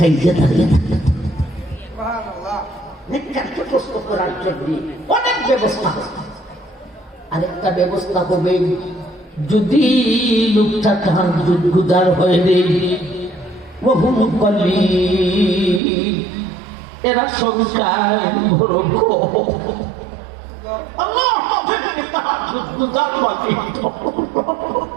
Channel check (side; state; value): left; drops out; at 15.8 s